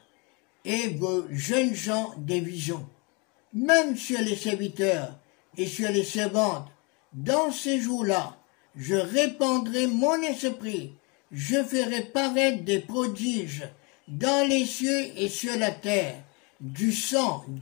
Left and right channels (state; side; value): quieter; right; 29.4 dB